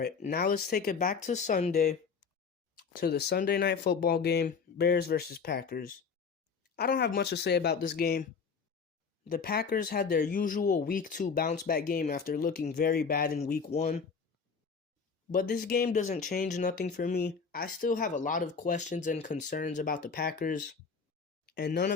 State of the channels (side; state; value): right; quieter; 5.5 dB